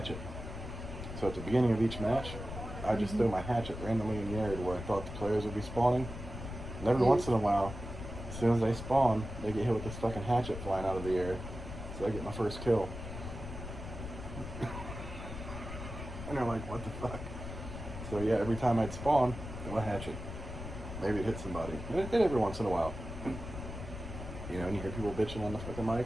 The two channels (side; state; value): left; noise; rumble, 9 dB below the sound